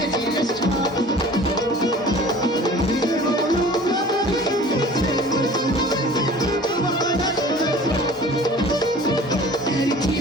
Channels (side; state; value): both; normal; correlation 0.45